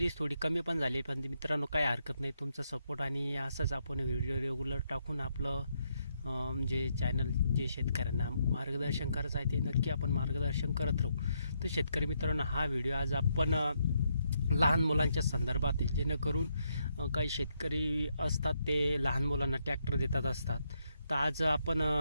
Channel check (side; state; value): both; inverted; correlation -0.77